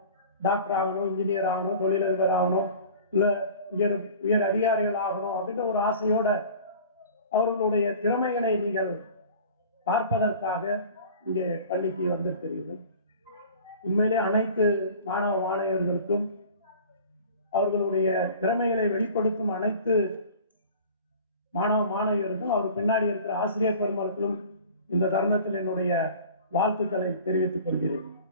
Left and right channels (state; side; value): inverted; both; correlation -0.43